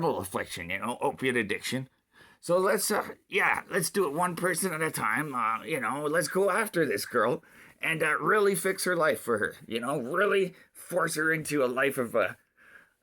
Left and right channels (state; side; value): identical; both; correlation 1.00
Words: affliction, you know, opiate addiction. So let's do it one person at a time. You know, let's go after this girl and really fix her life for her. You know, really force her into a life of